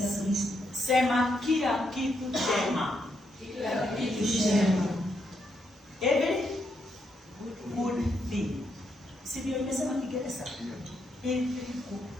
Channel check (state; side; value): normal; both; correlation 0.79